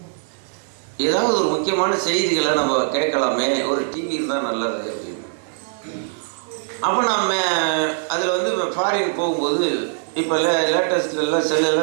ஏதாவது ஒரு முக்கியமான செய்திகளை நம்ம கேட்கலாமே, ஒரு டிவி இருந்தால் நல்லது அப்படின்னு. அப்போ நம்ம அதில் வந்து ஃபாரின் போகும்போது இப்போ லேட்டஸ்ட்லாம்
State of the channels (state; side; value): silent; left; 65 dB below the other